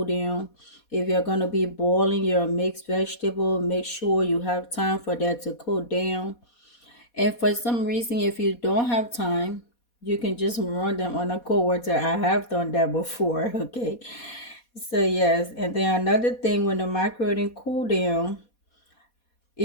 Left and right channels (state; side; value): late; right; 4.2 ms